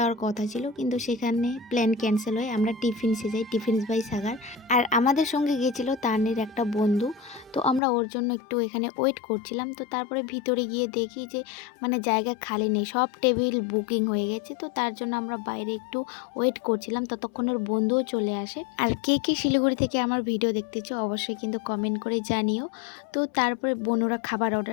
কথা ছিল, কিন্তু সেখানে প্ল্যান ক্যান্সেল হয়। আমরা টিফিনসে যাই, টিফিনস বাই সাগার। আর আমাদের সঙ্গে গিয়েছিল তানের একটা বন্ধু। তো আমরা ওর জন্য একটু এখানে ওয়েট করছিলাম। তো তারপরে ভিতরে গিয়ে দেখি যে জায়গা খালি নেই, সব টেবিল বুকিং হয়ে গেছে। তো তার জন্য আমরা বাইরে একটু ওয়েট করছিলাম, ততক্ষণ ওর বন্ধুও চলে আসে। আর কে কে শিলিগুড়ি থেকে আমার ভিডিও দেখতেছো অবশ্যই কিন্তু কমেন্ট করে জানিও। তো তারপরে বোনরা খাবার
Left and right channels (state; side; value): drops out; right; at 7.8 s